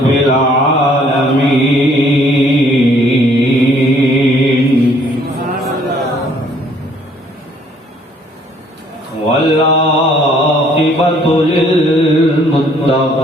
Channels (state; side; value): normal; both; correlation 0.62